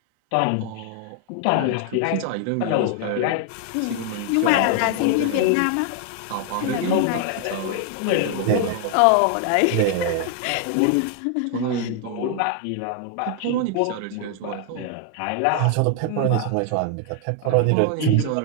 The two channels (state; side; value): different; both; correlation 0.00